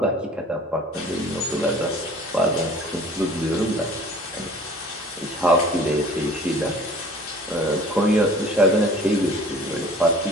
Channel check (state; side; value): normal; both; correlation 0.47